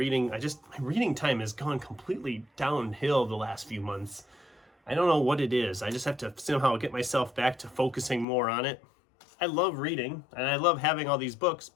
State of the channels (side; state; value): right; drops out; at 8.2 s